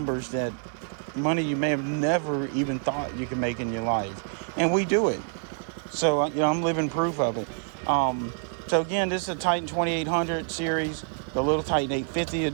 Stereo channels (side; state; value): left; silent; 59 dB below the other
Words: that money you may have never even thought you could make in your life, and we do it. So I'm living proof of it. So again, this is a Titan 2800 series. The little Titan 850 to